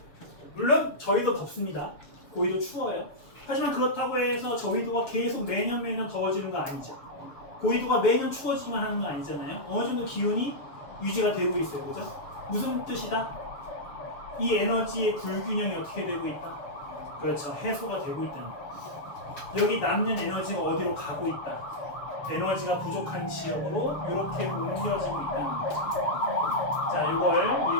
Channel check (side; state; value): right; late; 6.9 ms